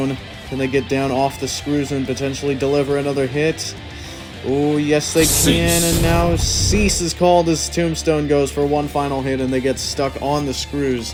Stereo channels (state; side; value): identical; both; correlation 1.00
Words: can they get down off the screws and potentially deliver another hit? Oh, yes they can, and now Cease is called as Tombstone goes for one final hit, and they get stuck on the